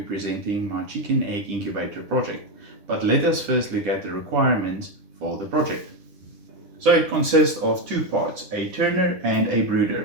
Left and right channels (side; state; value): left; late; 10 ms